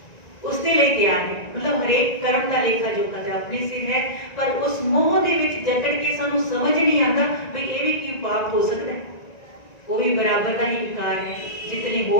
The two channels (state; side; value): late; right; 1.9 ms